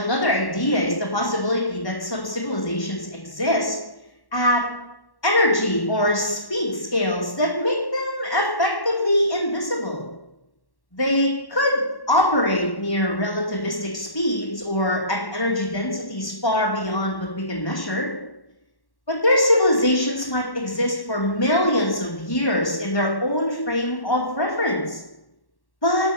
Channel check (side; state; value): right; late; 1.1 ms